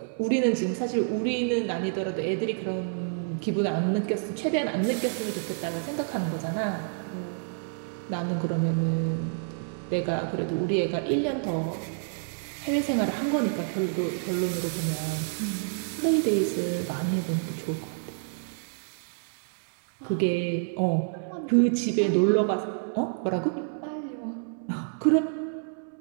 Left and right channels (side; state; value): left; silent; digital silence